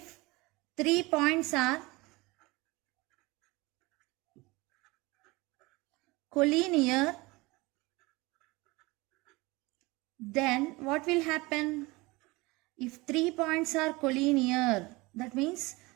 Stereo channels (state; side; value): quieter; left; 23.2 dB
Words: points are collinear, then what will happen? If 3 points are collinear, that means